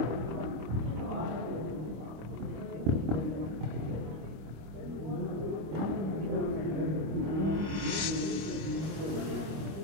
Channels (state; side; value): late; left; 25 ms